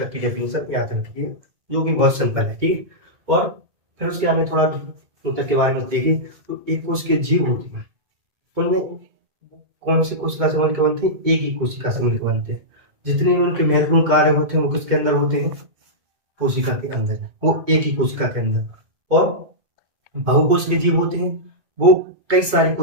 की डेफिनेशन याद रखिए जो कि बहुत सिंपल है, ठीक है। और फिर उसके आगे थोड़ा ऊतक के बारे में देखिए, तो एक कोश के जीव होती है, उनमें कौन सी कोशिका से मिलकर बनते हैं, एक ही कोशिका से मिलकर बनते हैं। जितने भी उनके महत्वपूर्ण कार्य होते हैं वो किसके अंदर होते हैं, कोशिका के अंदर, वो एक ही कोशिका के अंदर। और बहुकोशिकीय जीव होते हैं वो कई सारी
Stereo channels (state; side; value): late; left; 2.2 ms